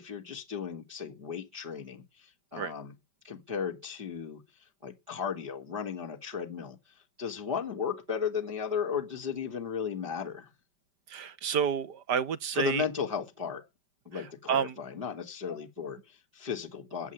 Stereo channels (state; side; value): late; left; 5.1 ms